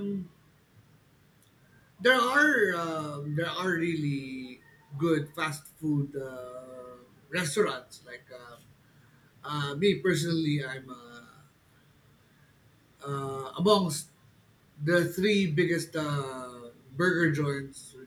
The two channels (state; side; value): identical; both; correlation 1.00